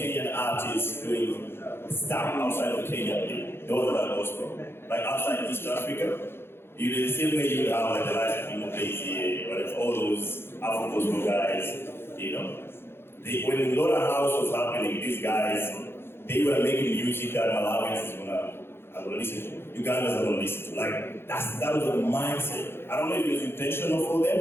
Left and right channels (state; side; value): late; right; 0.11 ms